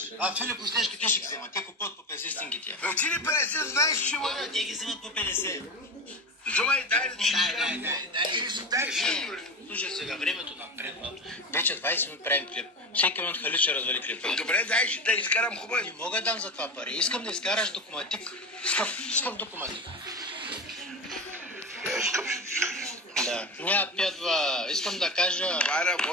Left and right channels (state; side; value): normal; both; correlation 0.24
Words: А Филип Остешки, те ще ги взема. Те купуват по 50 стинги тия. Ти ли 50 знаеш, че има? Те ги вземат по 50. Вземай, дай да ти Дай, слушай сега, времето напредно. Вече 20 минути правим клип. Всеки минут Халид ще развали клипа. Добре, дай да изкарам хубаво. Не мога да дам за това пари. Искам да изкараш документик. Скъп документик. Да. Няма пядва. Искам да кажа... Това